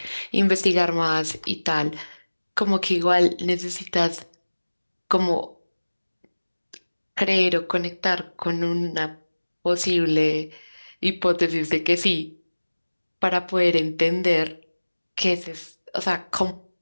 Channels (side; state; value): both; inverted; correlation -1.00